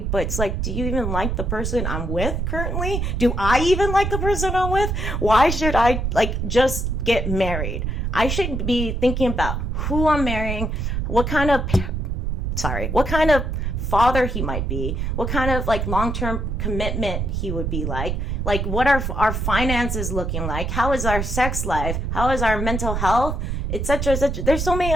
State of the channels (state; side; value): noise; right; rumble, 1 dB below the sound